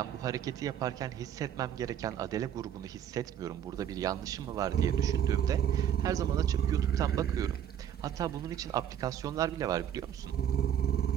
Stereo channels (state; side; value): quieter; left; 9.7 dB